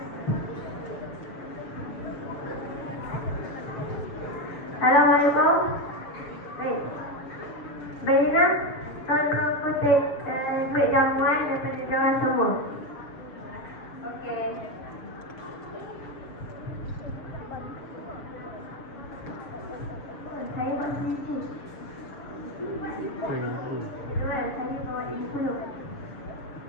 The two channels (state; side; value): late; right; 7.0 ms